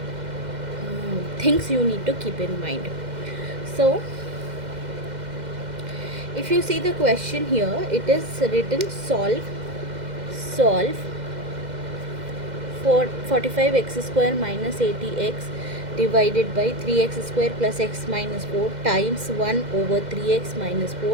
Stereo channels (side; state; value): left; late; 2.1 ms